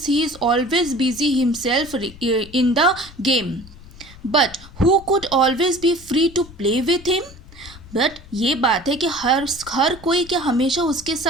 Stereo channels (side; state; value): left; noise; rumble, 19 dB below the sound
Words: he is always busy himself in the game. But who could always be free to play with him. बट ये बात है कि हर कोई क्या हमेशा उसके